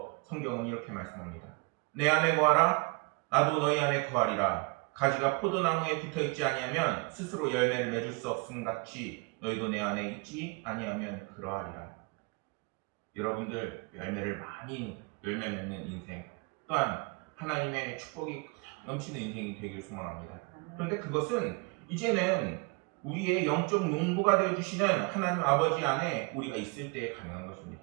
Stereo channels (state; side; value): quieter; left; 29.0 dB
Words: 성경은 이렇게 말씀합니다. 내 안에 거하라 나도 너희 안에 거하리라. 가지가 포도나무에 붙어있지 아니하면 스스로 열매를 맺을 수 없음 같이 너희도 내 안에 있지 아니하면 그러하리라. 여러분들 열매 맺는 인생 또한 하나님의 축복이 넘치는 인생이 되길 소망합니다. 그런데 그것은 이제는 우리의 영적 농부가 되어주시는 하나님 아버지 안에 우리가 있을 때 가능한